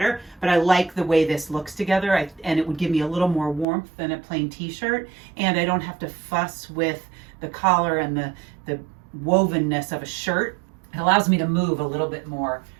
But I like the way this looks together, and it would give me a little more warmth than a plain t-shirt, and I don't have to fuss with the collar and the wovenness of a shirt. It allows me to move a little bit more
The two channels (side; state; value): left; drops out; at 3.7 s